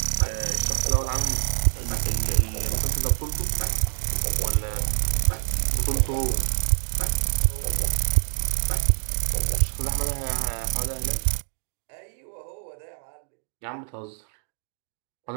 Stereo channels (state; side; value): silent; left; digital silence